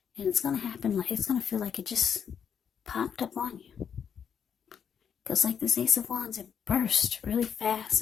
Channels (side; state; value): right; quieter; 7.7 dB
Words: And it's going to happen, it's going to feel like it just popped up on you. Because like this Ace of Wands, it burst really fast